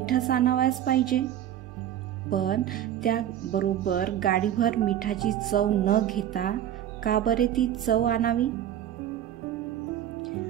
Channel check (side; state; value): left; quieter; 11.1 dB